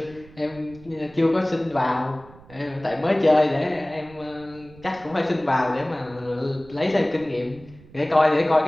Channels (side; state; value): right; noise; rumble, 22 dB below the sound